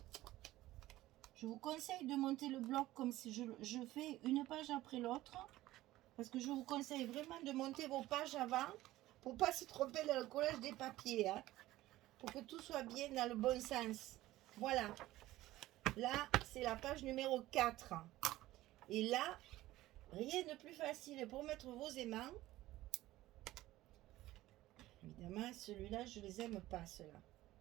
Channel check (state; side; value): quieter; left; 16.3 dB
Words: Je vous conseille de monter le bloc comme si je fais une page après l'autre. Parce que je vous conseille vraiment de monter vos pages avant pour ne pas se tromper dans le collage des papiers. Hein, pour que tout soit bien dans le bon sens. Voilà. Là, c'est la page numéro 4. Et là, rien de plus facile pour mettre vos aimants. Évidemment, celui-là, je ne les aime pas, ceux-là.